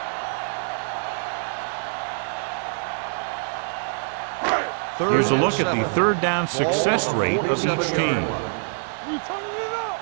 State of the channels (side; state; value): left; silent; digital silence